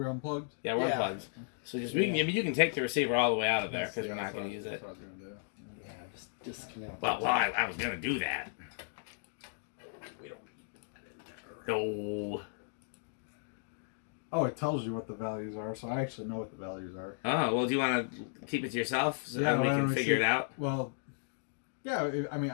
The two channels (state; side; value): silent; right; digital silence